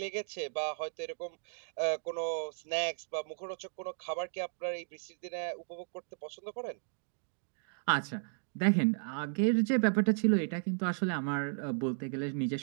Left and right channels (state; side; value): silent; left; digital silence